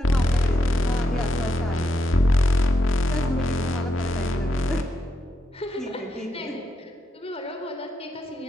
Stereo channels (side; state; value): both; normal; correlation 0.83